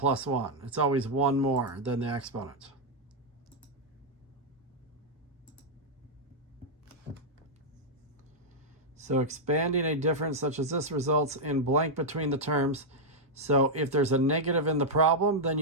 1. It's always one more than the exponent. So expanding a difference such as this results in blank between the terms. So if there's a negative in the problem, then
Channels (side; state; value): both; normal; correlation -0.04